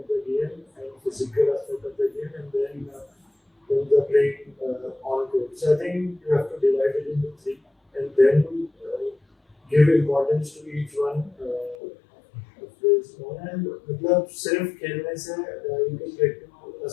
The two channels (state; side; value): drops out; right; at 11.8 s